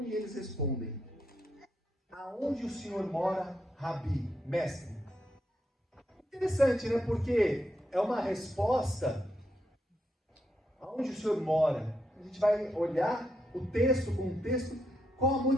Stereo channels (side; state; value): both; normal; correlation 0.81